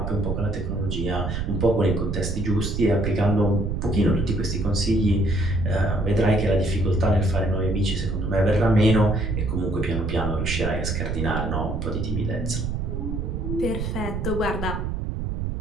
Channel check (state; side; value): noise; right; rumble, 3 dB below the sound